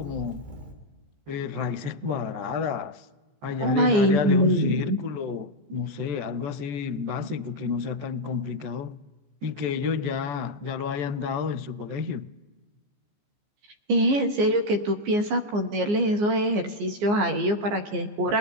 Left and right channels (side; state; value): left; late; 14 ms